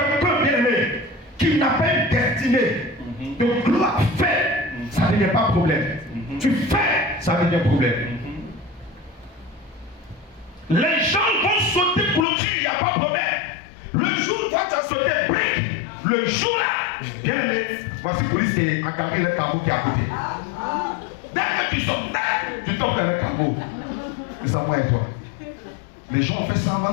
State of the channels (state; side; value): drops out; right; at 12.2 s